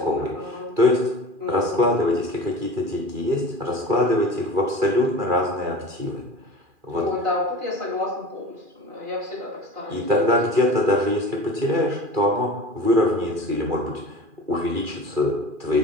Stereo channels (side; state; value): left; late; 2.4 ms